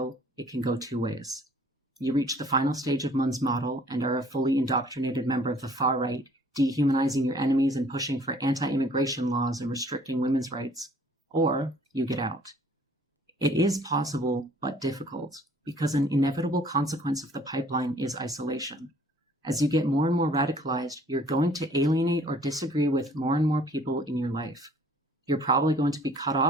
it can go two ways. You reach the final stage of Munn's model and are a fully indoctrinated member of the far right, dehumanizing your enemies and pushing for anti-immigration laws and restricting women's rights, or you get out. It is possible, but difficult, because an inevitable consequence of the pipeline is isolation. As you get more and more radicalized, you're going to alienate or disagree with more and more people in your life. You're probably going to be cut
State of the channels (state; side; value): normal; both; correlation 0.55